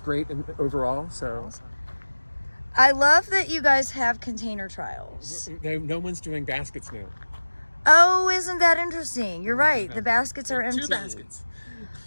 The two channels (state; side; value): inverted; both; correlation -1.00